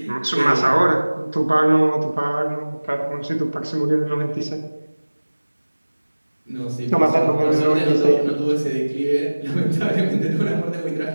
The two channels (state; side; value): inverted; both; correlation -1.00